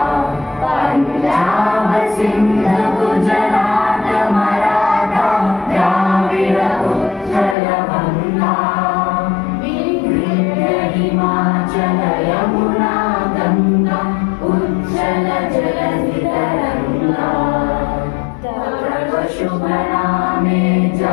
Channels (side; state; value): right; drops out; at 7.6 s